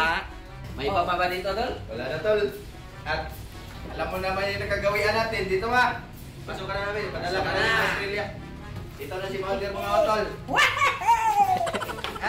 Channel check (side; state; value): both; identical; correlation 1.00